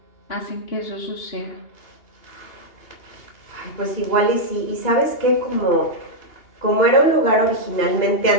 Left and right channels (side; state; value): right; late; 2.8 ms